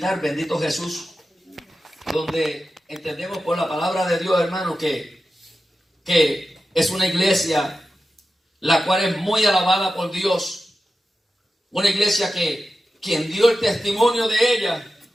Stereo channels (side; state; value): both; normal; correlation 0.92